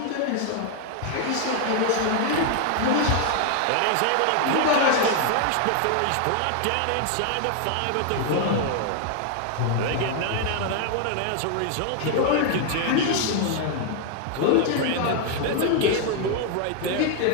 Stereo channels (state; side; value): different; both; correlation 0.00